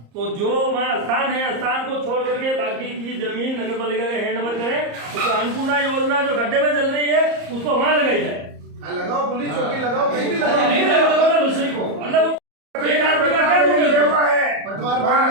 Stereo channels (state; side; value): late; left; 34 ms